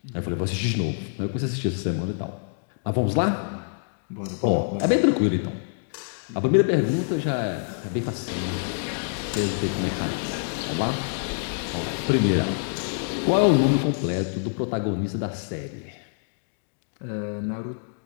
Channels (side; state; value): right; silent; digital silence